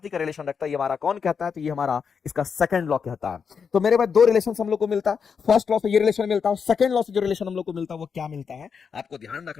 का रिलेशन रखता है। ये हमारा कौन कहता है, तो ये हमारा इसका सेकंड लॉ कहता है। तो मेरे पास दो रिलेशन हम लोग को मिलता है, फर्स्ट लॉ से ये रिलेशन मिलता है, सेकंड लॉ से जो रिलेशन हम लोग को मिलता है वो क्या मिलता है, आपको ध्यान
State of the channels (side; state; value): right; quieter; 6.3 dB